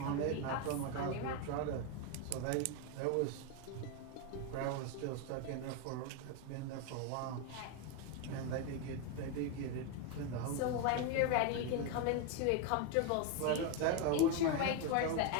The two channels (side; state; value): both; different; correlation 0.02